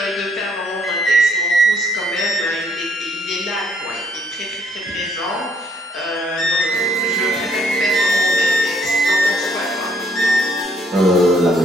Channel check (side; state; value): both; normal; correlation 0.67